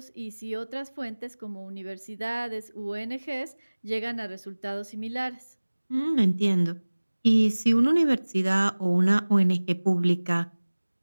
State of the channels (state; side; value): inverted; both; correlation -1.00